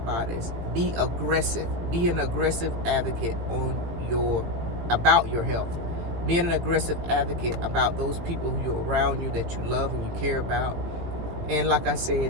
Be aggressive. Be an aggressive advocate about your health. Be an aggressive advocate about those people who are around you that you love and you care about. And like I said,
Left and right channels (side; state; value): left; late; 18 ms